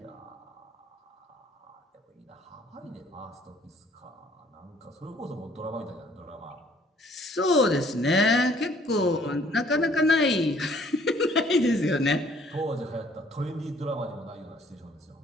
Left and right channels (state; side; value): normal; both; correlation 0.60